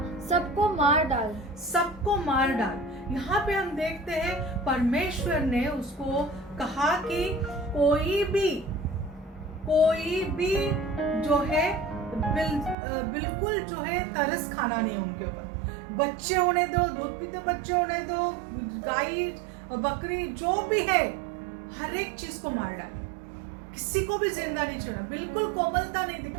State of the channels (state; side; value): drops out; left; at 12.8 s